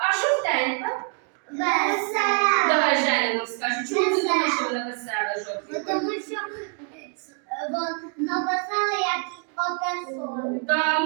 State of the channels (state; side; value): quieter; left; 39.2 dB